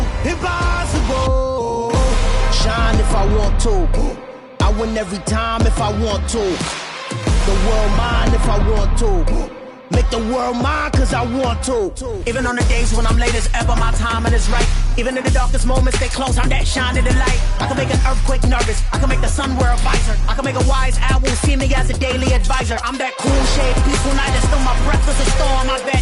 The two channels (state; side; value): identical; both; correlation 1.00